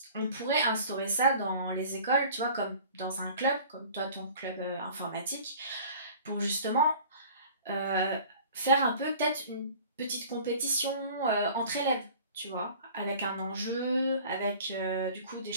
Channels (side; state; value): both; inverted; correlation -0.46